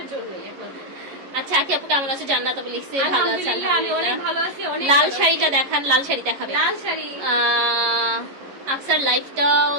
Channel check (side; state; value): left; late; 11 ms